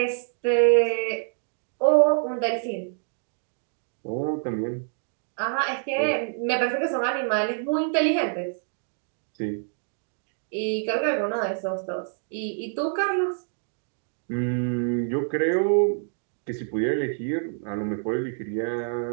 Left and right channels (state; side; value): silent; left; digital silence